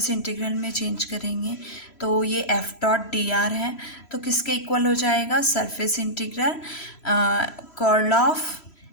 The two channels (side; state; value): right; late; 3.0 ms